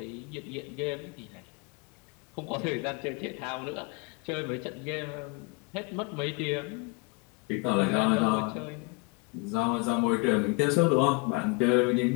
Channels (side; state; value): right; quieter; 29.1 dB